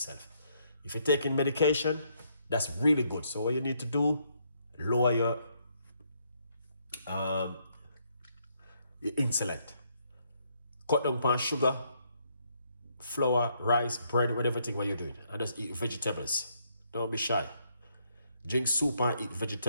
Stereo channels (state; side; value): inverted; both; correlation -0.72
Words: If you're taking medication, that's really good. So what you need to do, lower your insulin. Cut down on sugar, flour, rice, bread, whatever thing what you're doing. And just eat vegetables. Don't be shy. Drink soup and eat